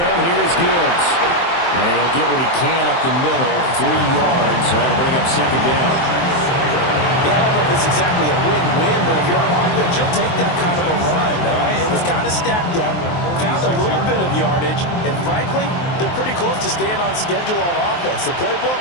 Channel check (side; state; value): right; late; 23 ms